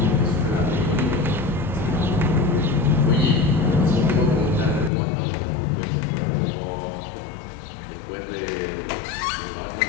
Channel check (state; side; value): drops out; right; at 4.9 s